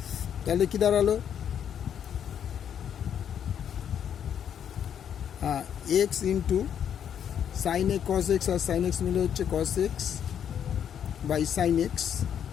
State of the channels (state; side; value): quieter; right; 8.9 dB